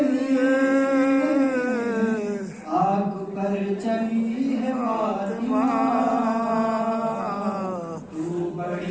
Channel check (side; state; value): both; identical; correlation 1.00